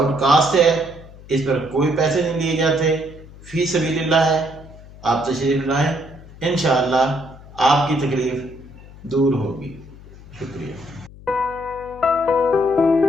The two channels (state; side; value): noise; left; hum, 19 dB below the sound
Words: कास्ट है, इस पर कोई पैसे नहीं लिए जाते, फी सबीलिल्लाह है। आप तशरीफ लाएं, इंशाअल्लाह आपकी तकलीफ दूर होगी। शुक्रिया।